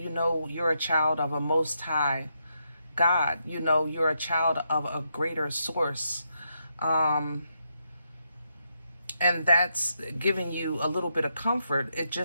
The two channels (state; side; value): inverted; both; correlation -0.81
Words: know you're a child of a Most High God. You know you're a child of a greater source. And that's giving you a little bit of comfort. It